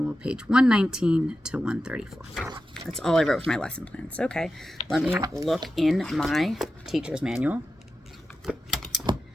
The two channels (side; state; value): both; normal; correlation 0.92